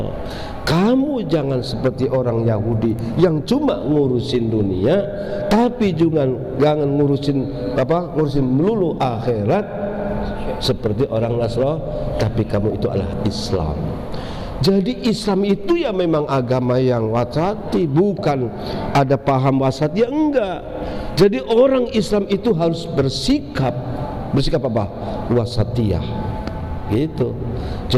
Kamu jangan seperti orang Yahudi yang cuma ngurusin dunia, tapi juga jangan ngurusin melulu akhirat seperti orang Nasrani, tapi kamu itu adalah Islam. Jadi Islam itu ya memang agama yang wasati, bukan ada paham wasati, ya enggak. Jadi orang Islam itu harus bersikap apa? Wasatiyah. Gitu.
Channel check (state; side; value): identical; both; correlation 1.00